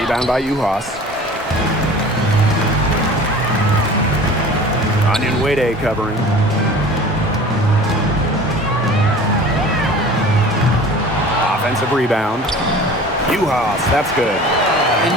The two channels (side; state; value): both; normal; correlation 0.42